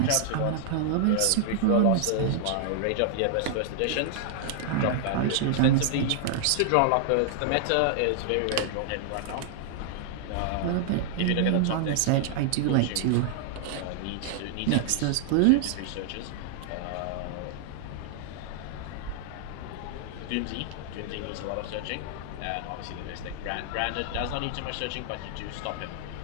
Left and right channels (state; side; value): different; both; correlation -0.01